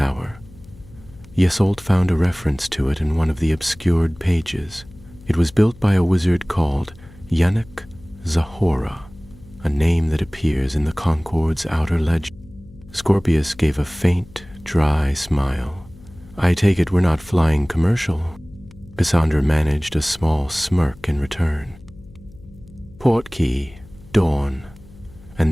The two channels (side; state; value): left; noise; hum, 22 dB below the sound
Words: Isolde found a reference to it in one of the obscured pages. It was built by a wizard called Yannick Zahora, a name that appears in the Concord's outer legend." Scorpius gave a faint, dry smile. "I take it we're not flying commercial." Cassandra managed a small smirk in return. "Portkey, dawn.